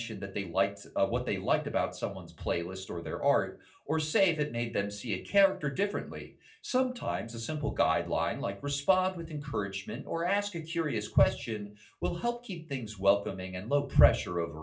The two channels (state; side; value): identical; both; correlation 1.00